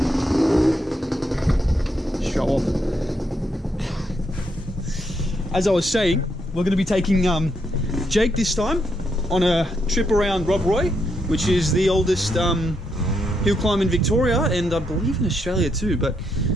Show off. As I was saying, we're going to be taking Jake this time on a trip around Rob Roy, which is the oldest hill climb in Victoria, and I believe in Australia too. But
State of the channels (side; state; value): both; normal; correlation 0.78